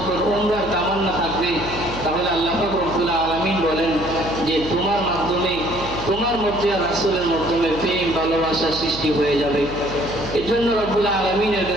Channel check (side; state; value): right; noise; hum, 13 dB below the sound